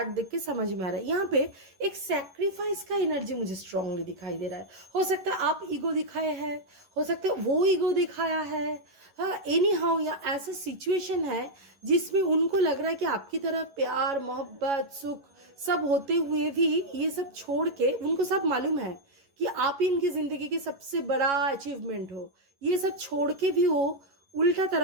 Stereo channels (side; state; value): left; late; 11 ms